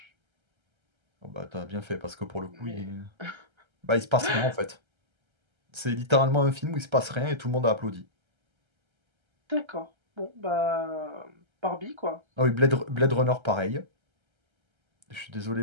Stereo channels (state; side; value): late; left; 1.3 ms